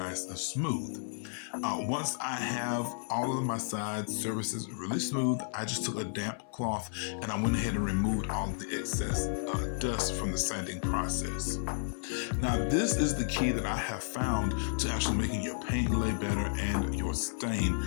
and smooth. Once I have all of my sides surfaces really smooth, I just took a damp cloth and I went ahead and removed all of the excess dust from the sanding process. Now this is the key that I have found to actually making your paint lay better and your stain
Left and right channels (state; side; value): silent; right; 56 dB below the other